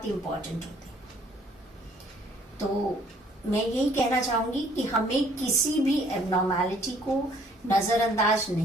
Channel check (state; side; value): normal; both; correlation 0.61